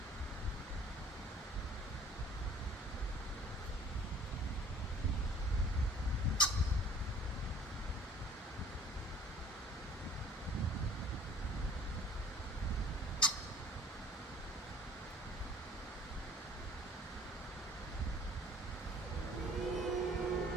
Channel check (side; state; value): both; normal; correlation 0.52